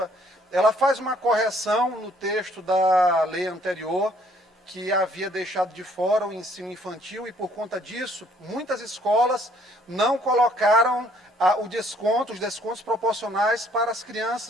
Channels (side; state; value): both; normal; correlation 0.63